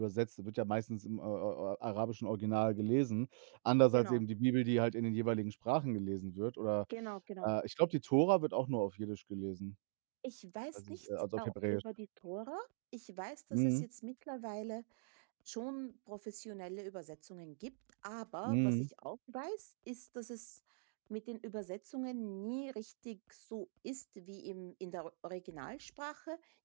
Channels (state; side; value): silent; left; digital silence